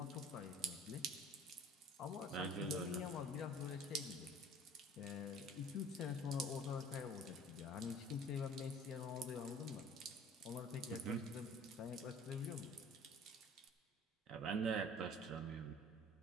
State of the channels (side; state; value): both; normal; correlation 0.48